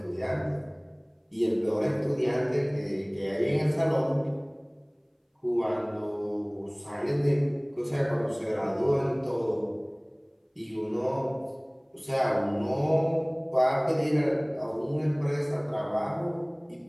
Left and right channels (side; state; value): both; identical; correlation 1.00